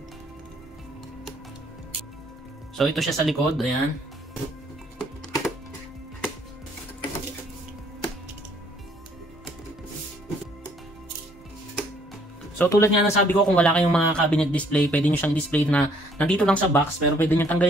So, ito siya sa likod, ayan. So tulad nga ng sabi ko, kung wala kayong mga cabinet display, pwede nyo siyang display na nandito lang sa box, pero pwede nyo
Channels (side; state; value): both; normal; correlation 0.63